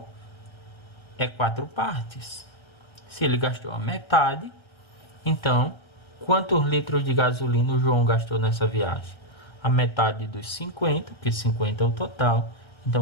é 4 partes. Se ele gastou a metade, então, quantos litros de gasolina o João gastou nessa viagem? A metade dos 50, porque 50 é o total.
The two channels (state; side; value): late; right; 1.3 ms